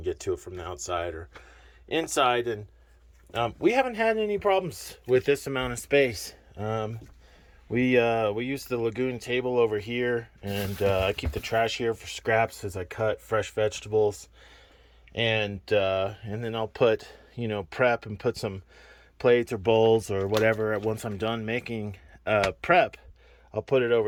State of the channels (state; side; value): identical; both; correlation 1.00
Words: get to it from the outside or inside, and we haven't had any problems with this amount of space. We use the lagoon table over here, and I keep the trash here for scraps as I cut fresh vegetables, and then I'll put prep and put some plates or bowls or whatever. Once I'm done making prep, I'll put it